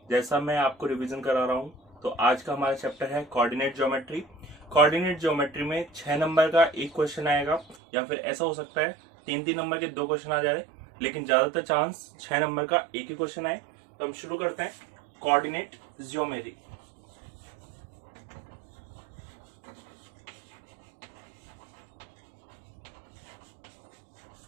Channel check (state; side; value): drops out; left; at 7.8 s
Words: जैसा मैं आपको रिवीजन करा रहा हूँ, तो आज का हमारा चैप्टर है कोऑर्डिनेट ज्योमेट्री। कोऑर्डिनेट ज्योमेट्री में 6 नंबर का एक क्वेश्चन आएगा, या फिर ऐसा हो सकता है 3-3 नंबर के 2 क्वेश्चन आ जाए, लेकिन ज्यादातर चांस 6 नंबर का एक ही क्वेश्चन आए। तो हम शुरू करते हैं कोऑर्डिनेट ज्योमेट्री।